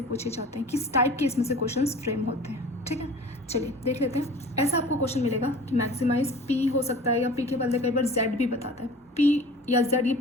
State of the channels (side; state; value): both; normal; correlation 0.42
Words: पूछे जाते हैं, किस टाइप के इसमें से क्वेश्चन फ्रेम होते हैं। ठीक है, चलिए देख लेते हैं। ऐसा आपको क्वेश्चन मिलेगा कि मैक्सिमाइज पी हो सकता है, या पी के बदले कई बार जेड भी बताता है। पी या जेड ये